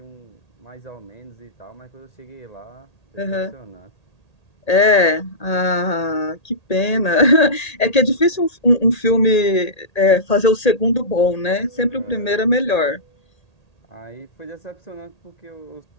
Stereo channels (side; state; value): right; late; 1.8 ms